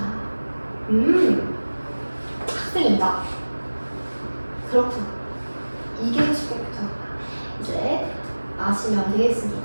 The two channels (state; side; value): inverted; both; correlation -1.00